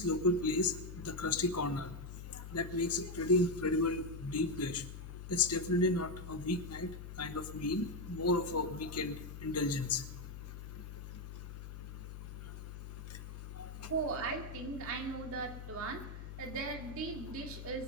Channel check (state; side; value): noise; left; hum, 10 dB below the sound